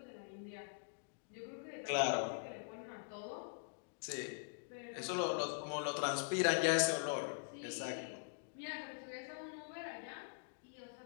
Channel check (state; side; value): silent; right; digital silence